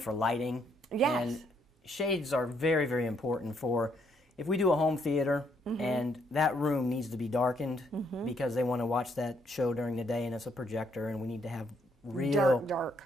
lighting. Yes. And shades are very, very important for if we do a home theater and that room needs to be darkened because they want to watch that show during the day and it's a projector and we need to have real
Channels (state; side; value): normal; both; correlation 0.71